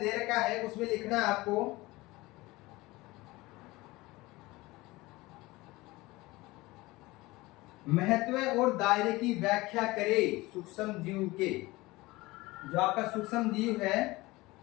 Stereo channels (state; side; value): quieter; right; 20.7 dB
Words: रखा है उसमें लिखना है आपको महत्व और दायरे की व्याख्या करें सूक्ष्म जीव के। जो आपका सूक्ष्म जीव है,